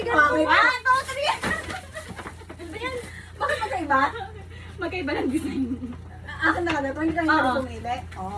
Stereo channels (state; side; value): identical; both; correlation 1.00